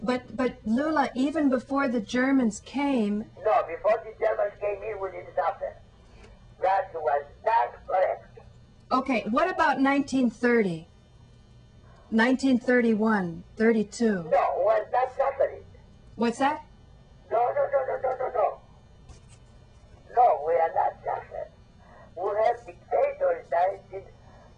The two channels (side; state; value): both; identical; correlation 1.00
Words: But Loula, even before the Germans came... No, before the Germans came in, we didn't suffer. That was not correct. Okay, what about 1930? 1931, 32? No, was not suffering. What's that? No. No, we are not suffering. We have dictators,